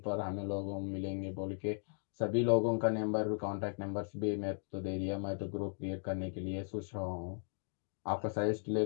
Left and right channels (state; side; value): silent; right; digital silence